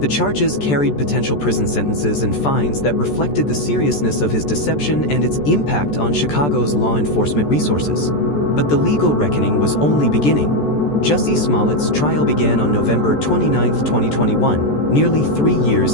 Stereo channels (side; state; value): right; late; 14 ms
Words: charges carried potential prison sentences and fines that reflected the seriousness of his deception and its impact on Chicago's law enforcement resources. But the legal reckoning was only beginning. Jussie Smollett's trial began on November 29, 2021, nearly 3